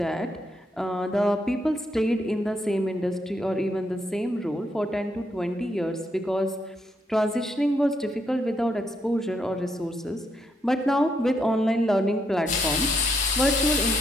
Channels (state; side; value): normal; both; correlation 0.77